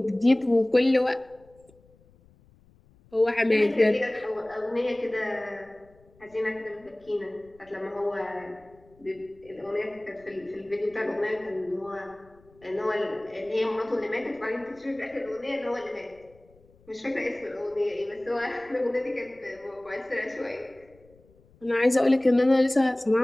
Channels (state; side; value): noise; left; rumble, 29 dB below the sound